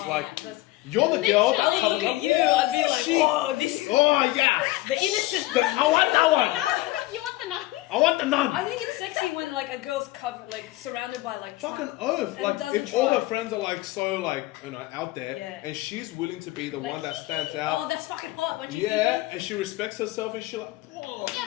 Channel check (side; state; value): right; quieter; 18.5 dB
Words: like, you're the girl I that's look at you, I'd be like, oh, yeah. The innocent. I want that one. You want the nun? I want the nun. I think it's sexy when like a girl's covered, like surrounded by like fucking oath. Like, if all her friends are like so like out there, and she's willing to be the one that stands out. Oh, that's fucking hot. What you think? And she respects herself, and she like. Oh. Yeah,